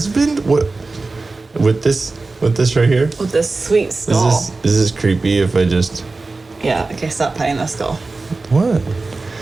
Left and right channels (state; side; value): quieter; left; 3.6 dB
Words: What? With this right here? With this sweet skull. Is this creepy if I just... Yeah, okay, stop petting the skull. What?